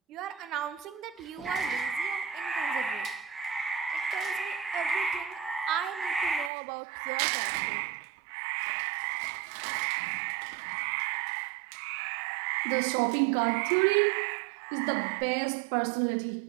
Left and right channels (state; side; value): drops out; left; at 6.5 s